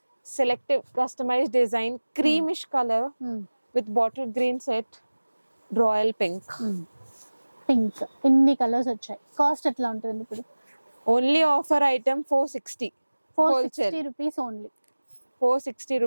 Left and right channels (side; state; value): both; inverted; correlation -1.00